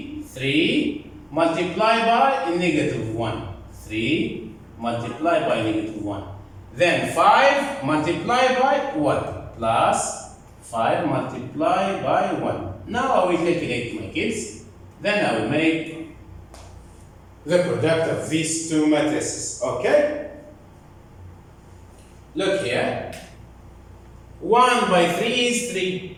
multiplied by negative 1. 3 multiplied by negative 1. Then 5 multiplied by 1 plus 5 multiplied by 1. Now I will calculate my kids. Then I will make the product of these two matrices. Okay? Look here. 1 by 3 is 3.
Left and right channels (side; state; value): both; identical; correlation 1.00